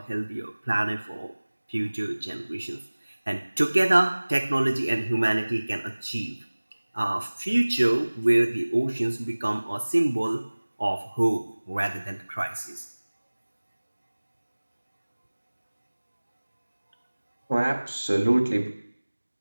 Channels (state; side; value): inverted; both; correlation -1.00